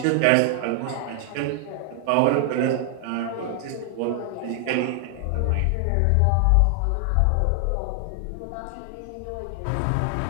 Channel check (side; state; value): both; different; correlation 0.00